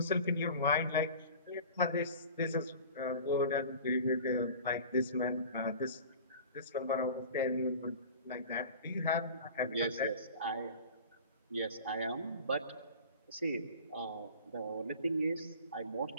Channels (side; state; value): both; inverted; correlation -0.40